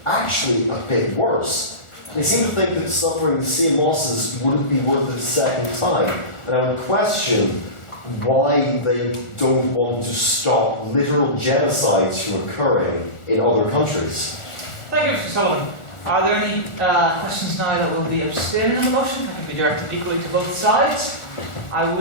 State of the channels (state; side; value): late; right; 1.4 ms